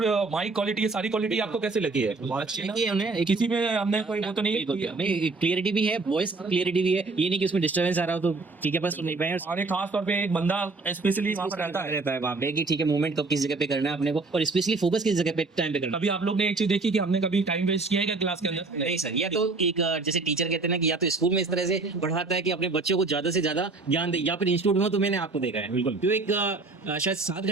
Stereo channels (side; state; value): left; quieter; 3.6 dB